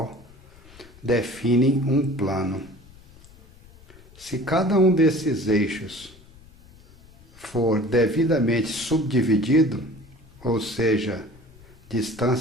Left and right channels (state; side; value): noise; left; rumble, 24 dB below the sound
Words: definem um plano. Se cada um desses eixos for devidamente subdividido, ou seja,